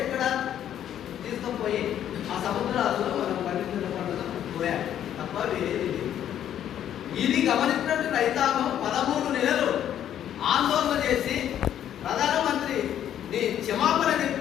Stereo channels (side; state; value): right; quieter; 10.5 dB